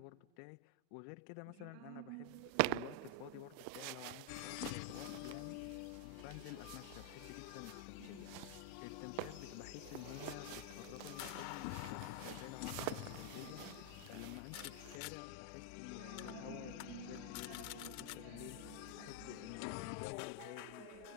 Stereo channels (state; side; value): different; both; correlation 0.00